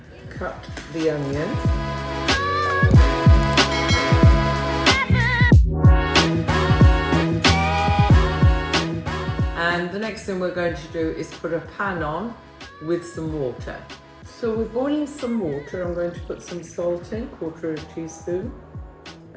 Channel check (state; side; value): identical; both; correlation 1.00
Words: cut the onion. And the next thing we're going to do is put a pan on with some water. So we're boiling some water. I'm going to put some salt in, 1/4 teaspoon.